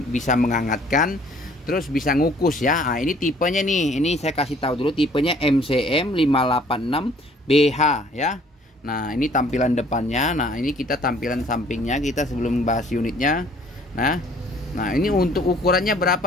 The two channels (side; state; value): both; normal; correlation 0.57